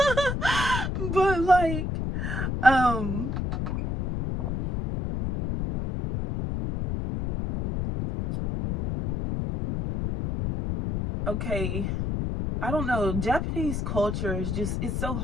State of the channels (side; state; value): left; noise; rumble, 2 dB below the sound